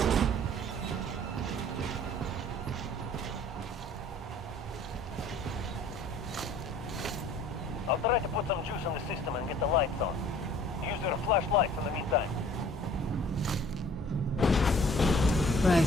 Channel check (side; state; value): both; normal; correlation 0.52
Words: I'll try to put some juice in the system and get the lights on. Use your flashlights in the meantime.